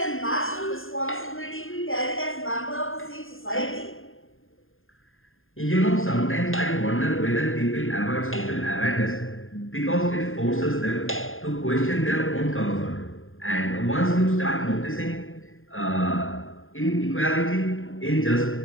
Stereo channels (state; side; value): late; right; 0.59 ms